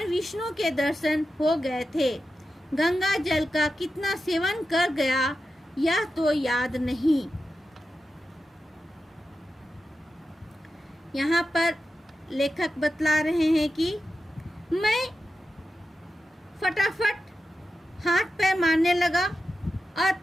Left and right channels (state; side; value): normal; both; correlation 0.91